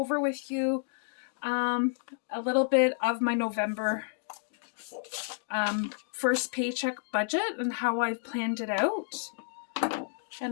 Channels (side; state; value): right; silent; digital silence